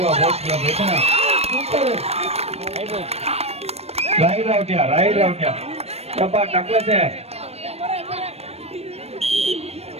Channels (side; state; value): left; late; 0.30 ms